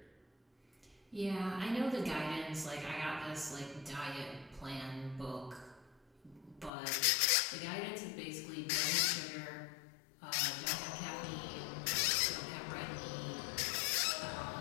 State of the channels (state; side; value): drops out; right; at 6.7 s